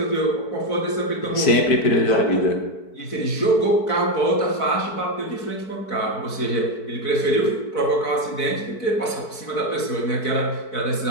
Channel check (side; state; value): right; late; 4.6 ms